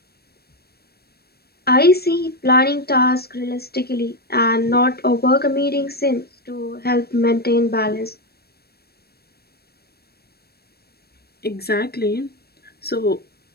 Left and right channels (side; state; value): right; late; 0.46 ms